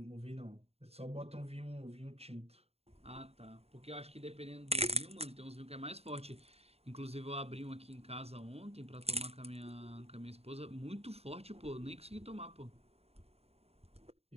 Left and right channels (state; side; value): late; left; 0.30 ms